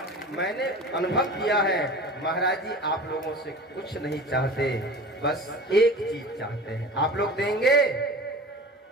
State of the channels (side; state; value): both; normal; correlation 0.37